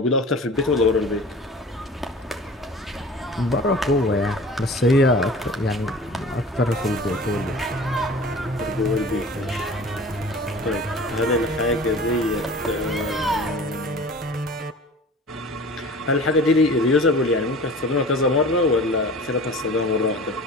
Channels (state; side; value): normal; both; correlation 0.41